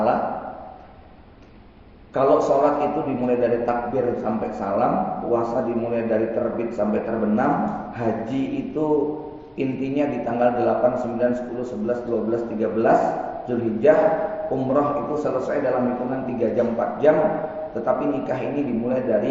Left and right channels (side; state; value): both; identical; correlation 1.00